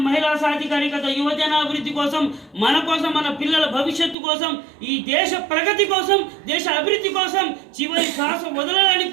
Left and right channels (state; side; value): drops out; left; at 4.2 s